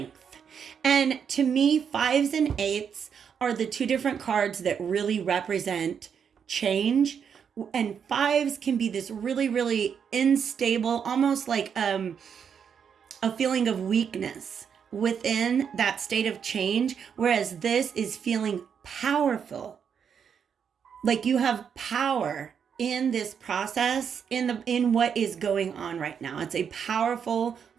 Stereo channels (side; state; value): left; quieter; 7.3 dB